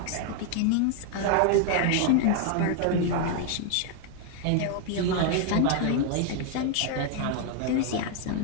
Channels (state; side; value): different; both; correlation 0.00